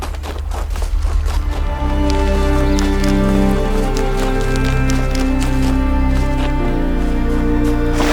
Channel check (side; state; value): both; identical; correlation 1.00